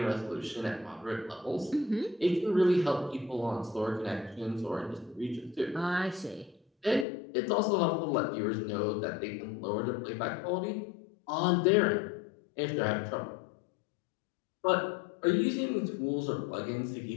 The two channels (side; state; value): right; drops out; at 7.1 s